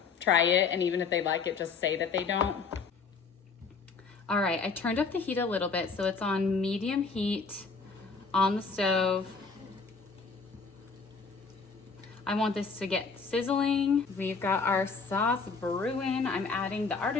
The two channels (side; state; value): right; quieter; 4.9 dB